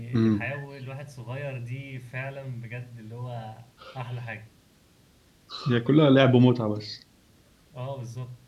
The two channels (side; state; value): both; identical; correlation 1.00